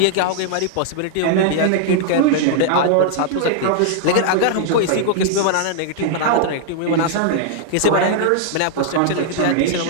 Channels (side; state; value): both; different; correlation -0.01